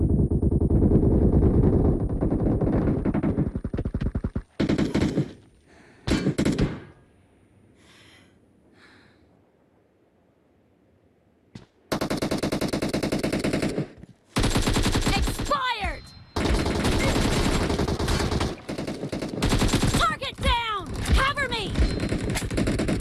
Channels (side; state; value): both; identical; correlation 1.00